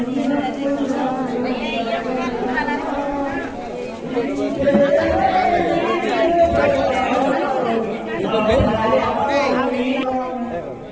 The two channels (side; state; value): both; identical; correlation 1.00